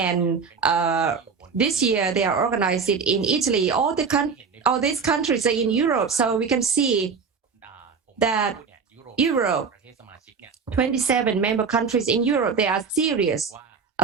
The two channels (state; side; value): quieter; left; 5.6 dB